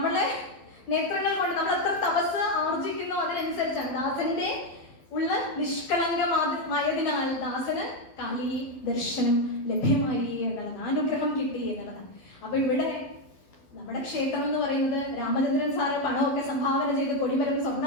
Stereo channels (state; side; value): late; right; 12 ms